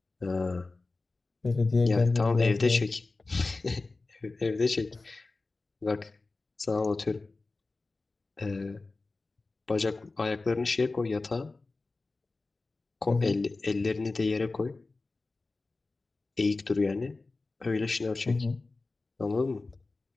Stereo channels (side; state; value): right; quieter; 3.5 dB